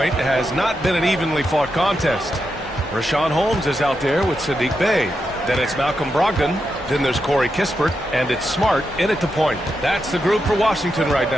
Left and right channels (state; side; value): normal; both; correlation 0.86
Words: has not been an evenly fought contest. Richaun Holmes is out there with Saddiq Bey. Then it's Malcolm Brogdon. Then there's Corey Kispert, and it's Smart in at the point. That's the group for Washington right